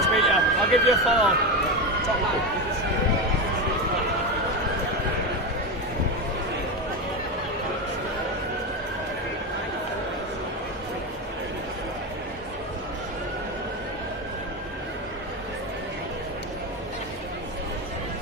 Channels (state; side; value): normal; both; correlation 0.16